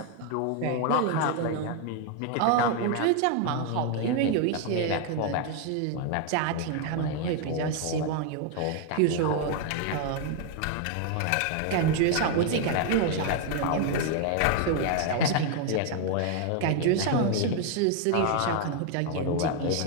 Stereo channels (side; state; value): both; different; correlation 0.01